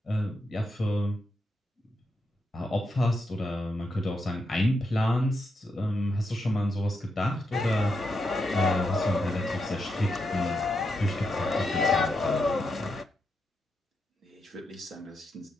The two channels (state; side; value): normal; both; correlation 0.84